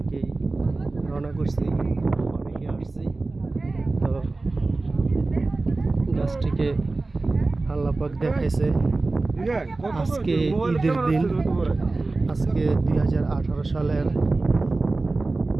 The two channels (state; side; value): quieter; left; 3.4 dB